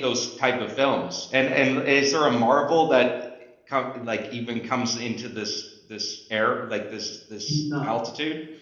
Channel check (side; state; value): both; identical; correlation 1.00